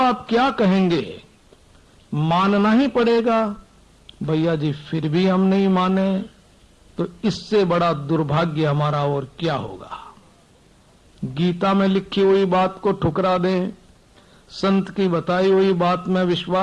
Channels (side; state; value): both; identical; correlation 1.00